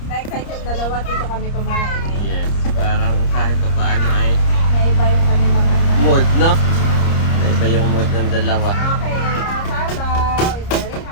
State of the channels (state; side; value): late; right; 30 ms